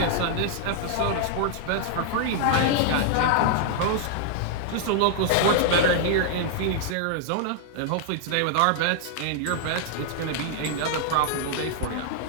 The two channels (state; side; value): different; both; correlation -0.01